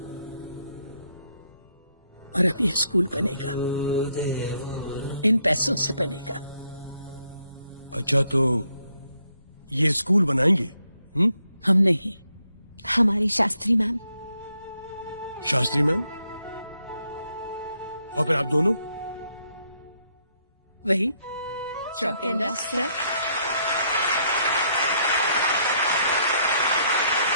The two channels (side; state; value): both; inverted; correlation -0.74